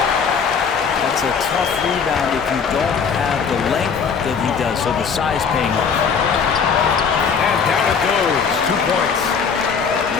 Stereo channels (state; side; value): quieter; right; 6.2 dB